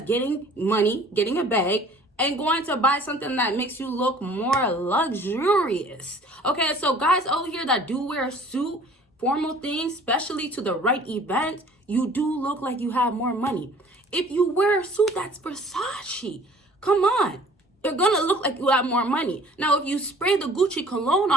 getting money, getting a bag, and going to buy something that makes you look more luxurious. Okay, so guys over here that do wear a suit, formal things, especially to the right event, you do look like you have more money. If you wear a suit that's Versace, come on, you're gonna look like you have more money. Now, if you spray the Gucci cologne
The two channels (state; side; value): normal; both; correlation 0.51